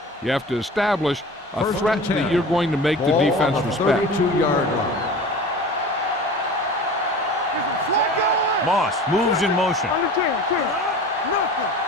You have to establish a threat that you're going to make the defense respect. 32-yard line. Moss moves in motion.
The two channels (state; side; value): normal; both; correlation 0.37